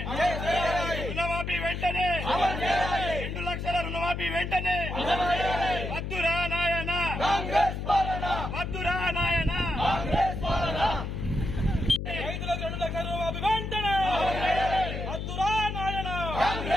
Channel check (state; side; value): noise; left; hum, 4 dB below the sound